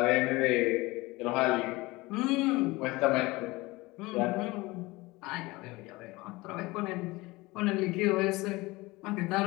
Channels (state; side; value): quieter; right; 21.8 dB